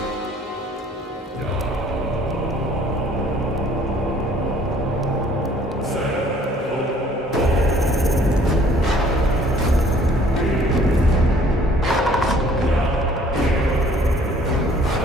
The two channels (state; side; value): normal; both; correlation 0.57